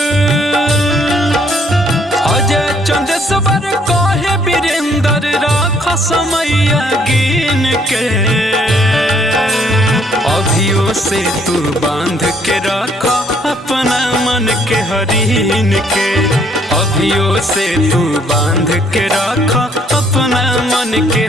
अजय चंदेश्वर कहे वीरेंद्र राख समय गिन के, अभियो से तू बांध के रख अपना मन के हरीन के, अभियो से तू बांध के रख अपना मन के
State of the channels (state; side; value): normal; both; correlation 0.66